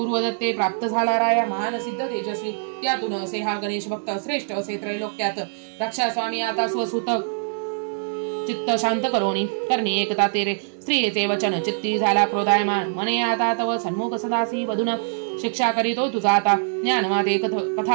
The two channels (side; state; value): left; silent; digital silence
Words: प्राप्त झाला राया महान सिद्ध तेजस्वी त्यातून असे हा गणेश भक्त श्रेष्ठ असे त्रैलोक्यात रक्षा स्वामी आता स्वसुत चित्त शांत करोनी करणी एकता तेरे स्त्रियेचे वचन चित्ती झाला क्रोधायमान मने आता तव सन्मुख सदासी वधून शिक्षा करीतो तुझा आता ज्ञान माते